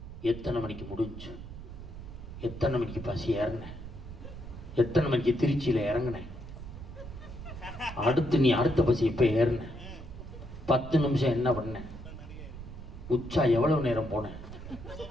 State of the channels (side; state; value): right; noise; rumble, 12 dB below the sound